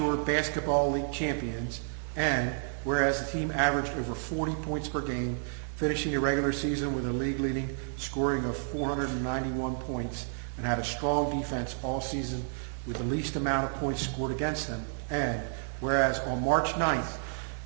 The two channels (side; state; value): left; silent; digital silence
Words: Basketball League champions, and whereas the team averaged over 40 points per game, finishing the regular season with a league-leading scoring of 491 points, and had a strong defense all season with the least amount of points scored against them. And whereas on March 9th,